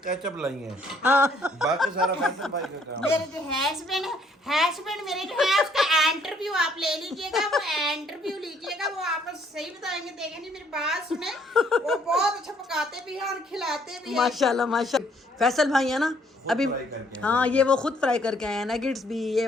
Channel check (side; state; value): both; normal; correlation 0.65